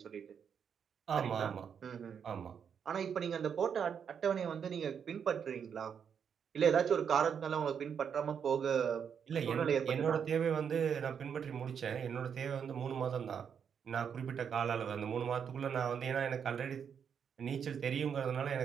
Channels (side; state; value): left; quieter; 7.4 dB